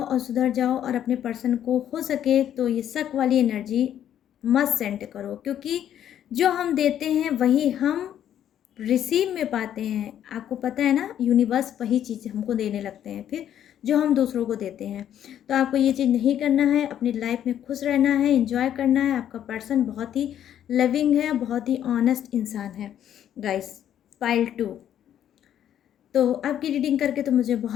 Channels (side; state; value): right; quieter; 10.4 dB